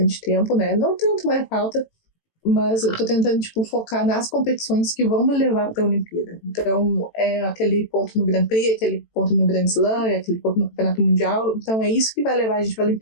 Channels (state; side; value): late; right; 18 ms